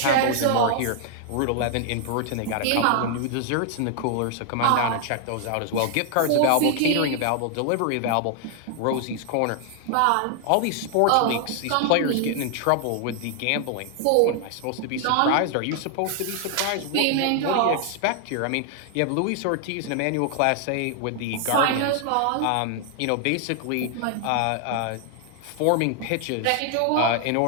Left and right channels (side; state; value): both; different; correlation 0.00